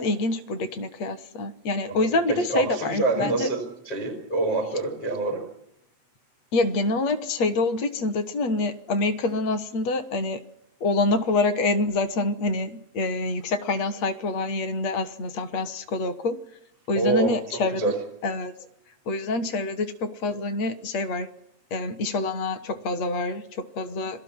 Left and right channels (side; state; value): right; late; 8.4 ms